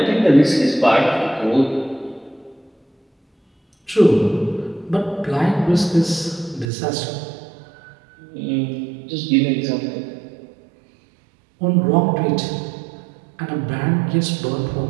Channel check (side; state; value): left; drops out; at 6.7 s